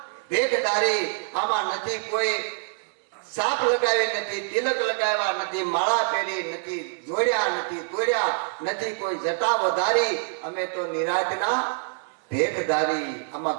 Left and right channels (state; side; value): silent; left; digital silence